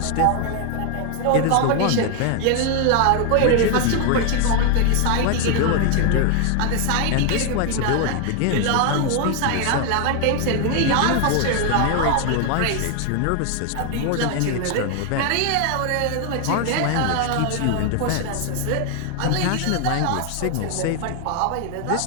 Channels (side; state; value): both; different; correlation 0.00